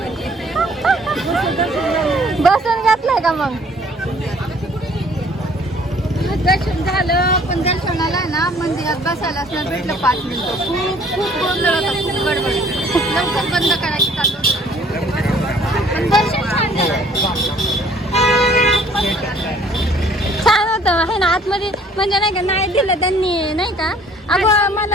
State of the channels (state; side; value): normal; both; correlation 0.57